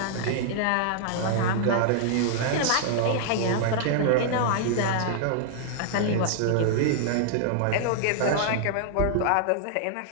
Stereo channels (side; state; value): both; different; correlation -0.01